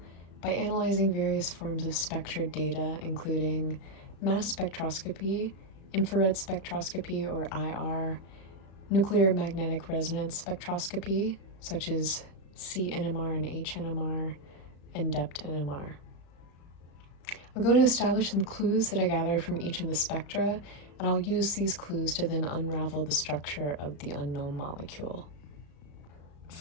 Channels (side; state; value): right; late; 35 ms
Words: by analyzing various forms of spectra data, including mass spectroscopy, infrared spectroscopy or IR, nuclear magnetic resonance spectroscopy, such as CNMR and HNMR, and DEPT NMR. I'm going to establish some clues that I gathered from each of the spectra, and I'll use these clues to then unravel the structure of the unknown molecule.